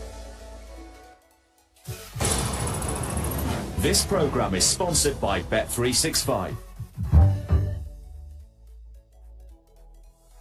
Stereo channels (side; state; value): both; identical; correlation 1.00